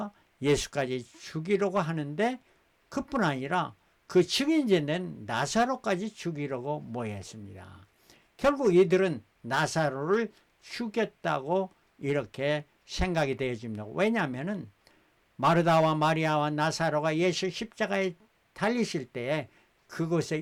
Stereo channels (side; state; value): both; identical; correlation 1.00